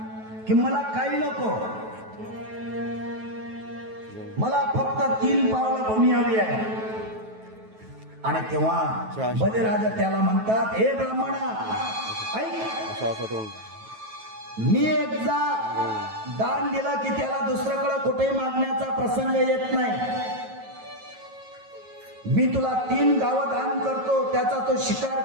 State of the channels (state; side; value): late; left; 9.2 ms